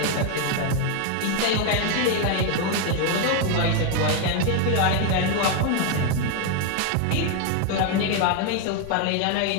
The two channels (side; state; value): both; different; correlation 0.01